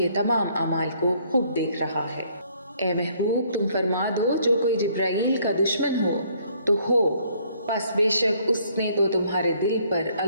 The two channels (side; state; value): both; inverted; correlation -0.64